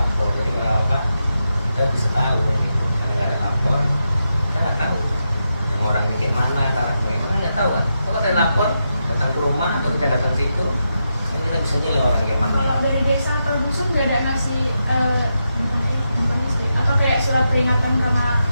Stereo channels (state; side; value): inverted; both; correlation -0.86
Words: Jadi kalau apa kita bisa tahu gitu. Kalau nggak ada lapor, kita nggak tahu. Yang orang di kayak mana, cara kayak mana nggak tahu kan. Kalau ada lapor, datang ke rumah atau kita datang ke situ, kan kita bisa nilai orang kayak mana. Kalau dari desa atau dusun nggak ada ngasih gimana sih? Atau kayak surat peringatan karena